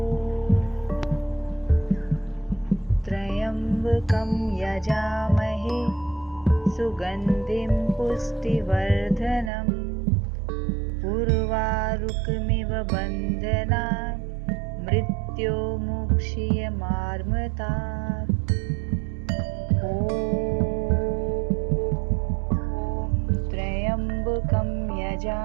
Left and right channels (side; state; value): left; drops out; at 9.5 s